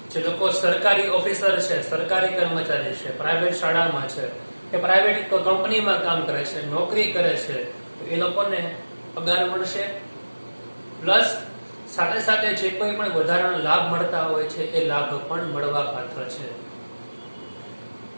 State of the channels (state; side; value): inverted; both; correlation -1.00